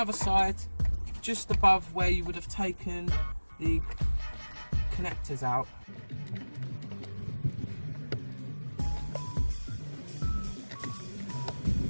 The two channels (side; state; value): both; inverted; correlation -1.00